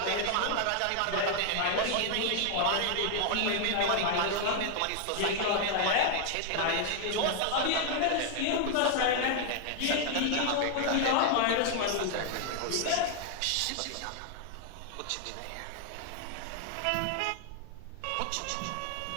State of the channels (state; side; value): different; both; correlation 0.00